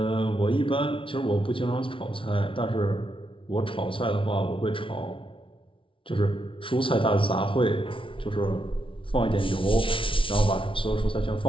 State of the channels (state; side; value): late; right; 0.25 ms